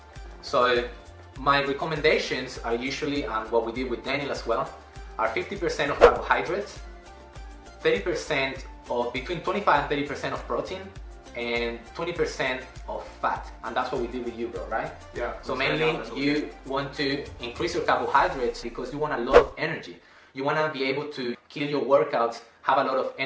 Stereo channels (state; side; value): identical; both; correlation 1.00